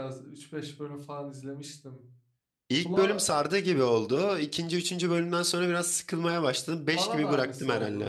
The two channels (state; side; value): identical; both; correlation 1.00